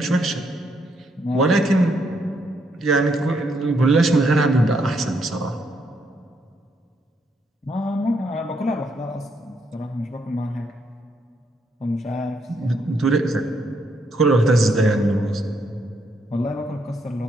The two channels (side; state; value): both; normal; correlation 0.75